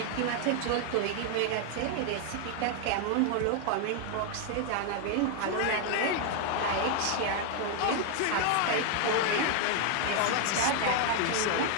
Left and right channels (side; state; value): both; different; correlation 0.00